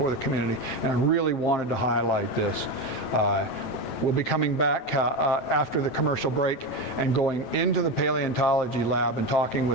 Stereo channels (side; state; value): right; late; 9.1 ms